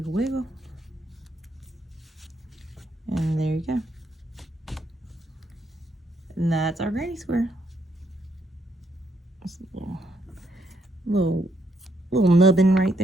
wiggle. And there you go. And that's our granny square. Just a little nubbin right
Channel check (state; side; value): normal; both; correlation 0.75